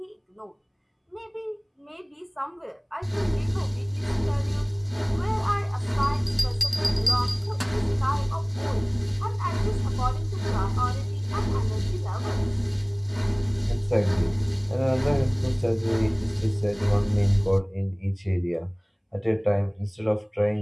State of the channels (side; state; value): both; identical; correlation 1.00